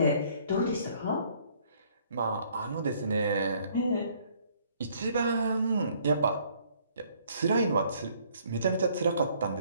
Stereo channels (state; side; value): inverted; both; correlation -0.62